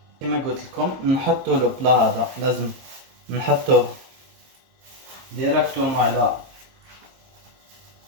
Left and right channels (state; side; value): late; left; 22 ms